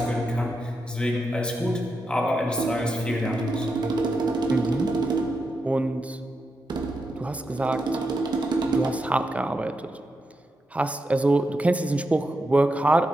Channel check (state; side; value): normal; both; correlation 0.86